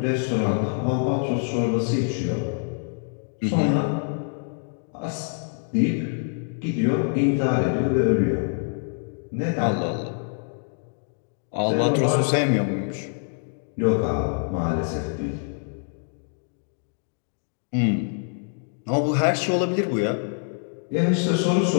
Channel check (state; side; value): silent; right; 62 dB below the other